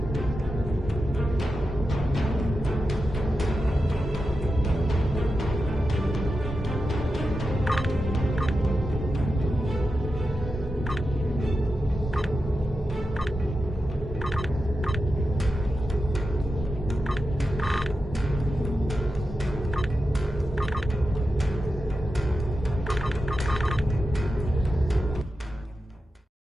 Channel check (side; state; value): both; normal; correlation 0.90